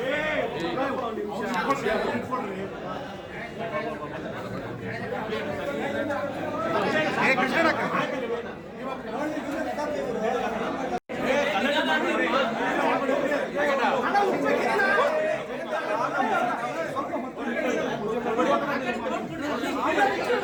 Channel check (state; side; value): identical; both; correlation 1.00